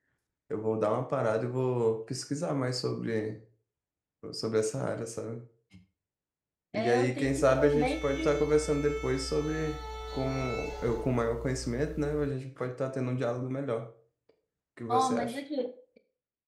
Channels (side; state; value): both; identical; correlation 1.00